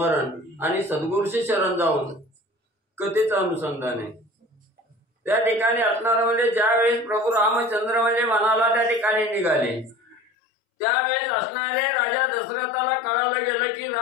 आणि सद्गुरूशी शरण जाऊन कथेचं अनुसंधान आहे। त्या ठिकाणी असणारं म्हणजे ज्यावेळेस प्रभू रामचंद्र म्हणजे वनाला त्या ठिकाणी निघाले त्यावेळेस असणारे राजा दशरथाला कळालं गेलं की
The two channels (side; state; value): right; drops out; at 10.3 s